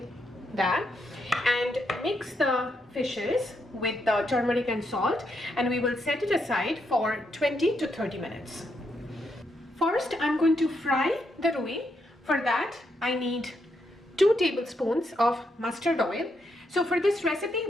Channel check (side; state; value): both; normal; correlation 0.79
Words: that and mix the fishes with the turmeric and salt, and we will set it aside for 20 to 30 minutes. First, I'm going to fry the rui. For that, I need 2 tablespoons of mustard oil. So for this recipe,